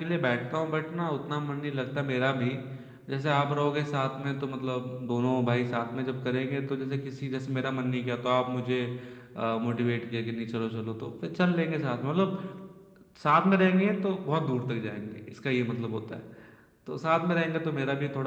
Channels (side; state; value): both; identical; correlation 1.00